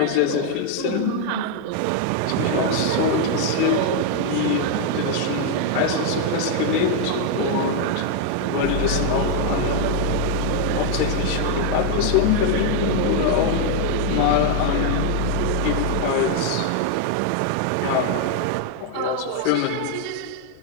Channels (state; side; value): different; both; correlation 0.00